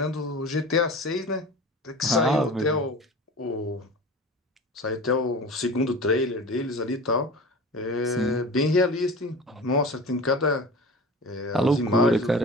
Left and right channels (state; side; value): normal; both; correlation 0.35